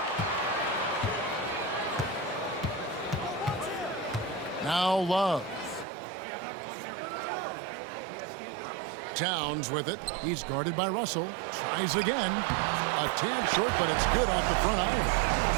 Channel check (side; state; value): left; drops out; at 5.9 s